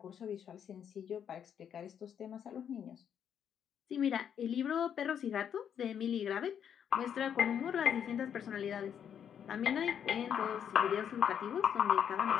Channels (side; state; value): right; quieter; 8.5 dB